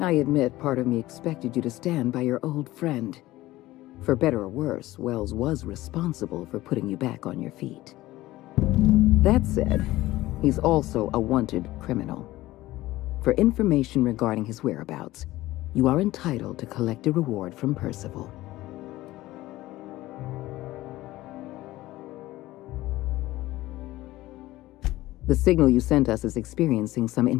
I admit part of me expected you to stand by your old friend. For better or worse, Wells was responsible for putting you back on your feet. That said, he's also a wanted criminal. For information regarding his whereabouts, you are entitled to collect a reward from Percival. The signal you sent us is experiencing some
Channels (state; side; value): quieter; right; 17.1 dB